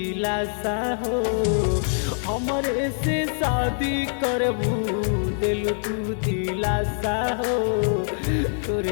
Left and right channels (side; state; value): right; silent; digital silence